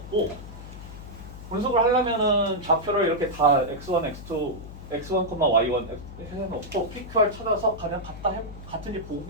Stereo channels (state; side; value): noise; left; hum, 13 dB below the sound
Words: 분석을 하려면은 좌표를 이렇게 다 x1, x2, x1, y1 해놓고 PQR 찾아서 그냥 같은지